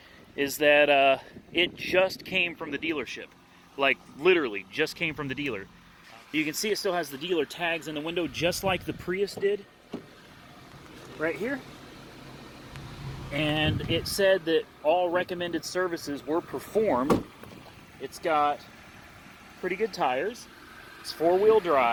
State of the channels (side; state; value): both; identical; correlation 1.00